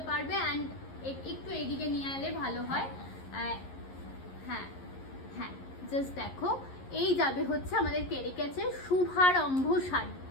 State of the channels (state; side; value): late; right; 11 ms